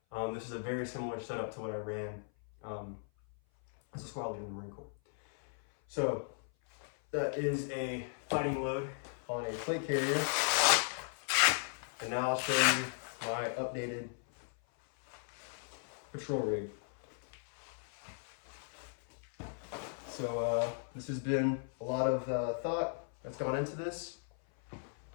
this is a very similar setup to what I ran as a squad leader in the Marine Corps. So that is a fighting load on a plate carrier. And now I'll show you my updated patrol rig. So this has been a lot of thought that's gone into this.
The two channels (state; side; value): silent; right; 53 dB below the other